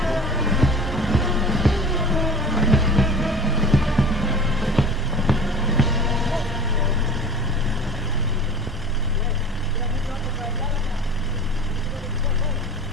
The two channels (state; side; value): normal; both; correlation 0.39